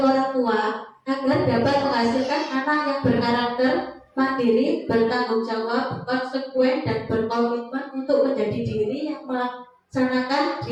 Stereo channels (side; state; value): both; identical; correlation 1.00